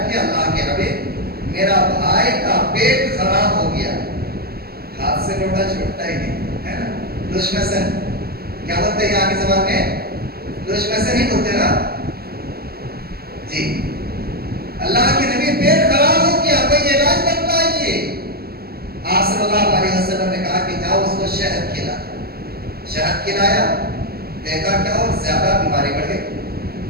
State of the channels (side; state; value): left; late; 0.45 ms